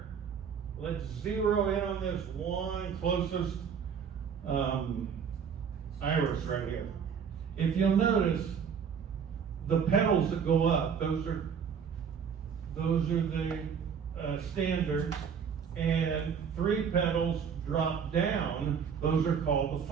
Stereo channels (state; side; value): quieter; left; 7.0 dB